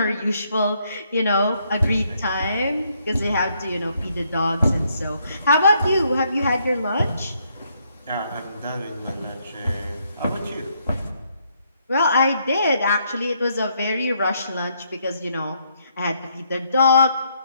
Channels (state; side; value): inverted; both; correlation -0.73